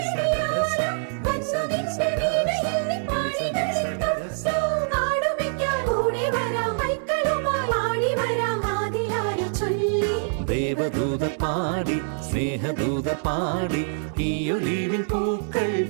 Gaza നിസ നിസ വീണയിൽ പാടി Gaza ആടുമിക്കാൻ ഓടി വരാം മൈക്കളുമായി ആടി വരാം ആദിലായി ചൊല്ലി ദേവദൂത പാടി സ്നേഹദൂത പാടി ഈ ഒലിവിൻ പൂക്കൾ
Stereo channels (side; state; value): left; silent; digital silence